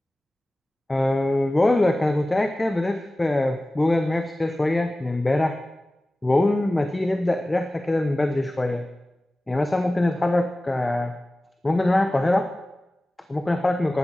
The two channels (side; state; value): both; normal; correlation 0.97